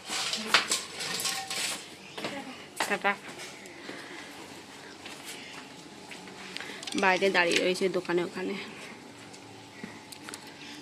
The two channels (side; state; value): both; identical; correlation 1.00